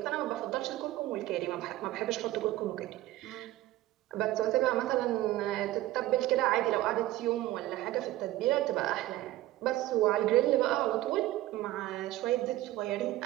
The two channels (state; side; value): quieter; left; 15.9 dB